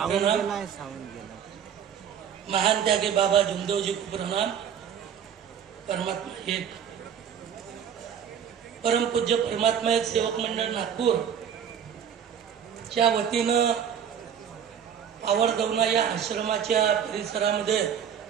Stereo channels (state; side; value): quieter; left; 8.3 dB